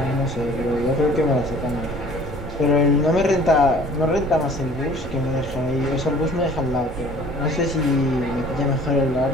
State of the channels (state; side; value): noise; right; rumble, 12 dB below the sound